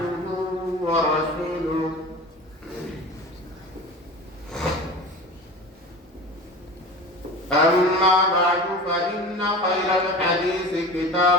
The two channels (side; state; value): both; normal; correlation 0.34